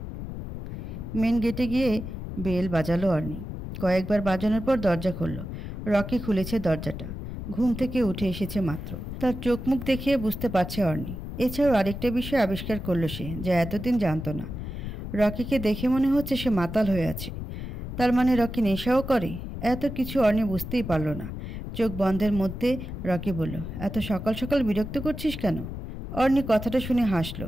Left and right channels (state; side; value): noise; left; rumble, 7 dB below the sound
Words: মেন গেটে গিয়ে বেল বাজালো অর্নি। কয়েকবার বাজানোর পর দরজা খুলল। রকি খুলেছে দরজাটা। ঘুম থেকে উঠে এসেছে মাত্র। তার চোখ মুখ দেখিয়ে বুঝতে পারছে অর্নি। এছাড়াও আরেকটা বিষয় আবিষ্কার করলো সে, যা এতদিন জানতো না। রকিকে দেখে মনে হচ্ছে সে মাতাল হয়ে আছে। তার মানে রকি নেশাও করে? এত কিছু অর্নি বুঝতেই পারল না। চোখ বন্ধের মধ্যে রকি বলল, এত সকাল সকাল বিরক্ত করছিস কেন? অর্নি কথাটা শুনে হাসলো,